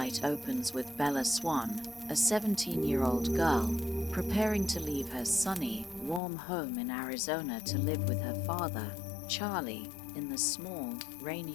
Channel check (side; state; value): right; drops out; at 6.2 s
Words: opens with Bella Swan, a 17-year-old girl, preparing to leave her sunny, warm home in Arizona to live with her father, Charlie, in the small,